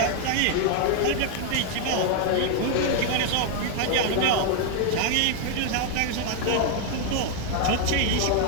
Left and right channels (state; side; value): different; both; correlation 0.00